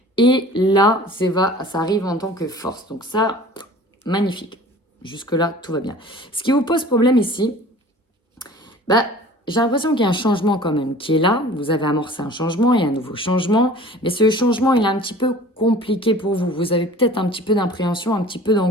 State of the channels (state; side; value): normal; both; correlation 0.45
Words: Et là, ça arrive en tant que force. Donc ça, magnifique. Jusque-là, tout va bien. Ce qui vous pose problème ici, bah, j'ai l'impression qu'il y a un changement quand même qui est là. Vous avez amorcé un changement, il y a un nouveau changement. Mais ce changement, il est un petit peu compliqué pour vous. Vous avez peut-être un petit peu d'appréhension, un petit peu